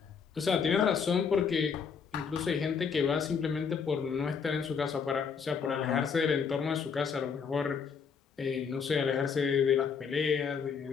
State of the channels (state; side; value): quieter; right; 6.2 dB